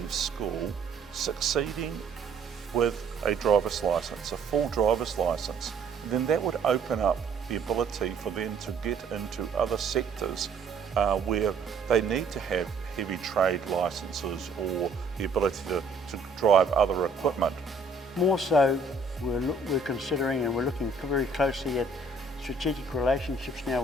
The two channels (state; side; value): quieter; left; 3.8 dB